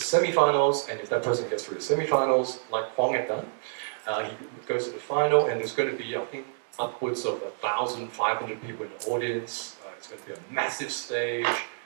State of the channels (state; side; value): silent; left; 59 dB below the other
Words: and if that person gets through the semi-finals, like Huang had done, he goes to the final, and there's going to be, I think, upwards of 1,500 people in the audience. It's going to be a massive stage,